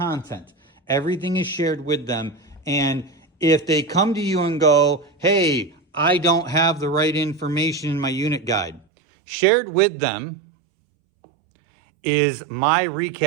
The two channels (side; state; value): left; drops out; at 8.8 s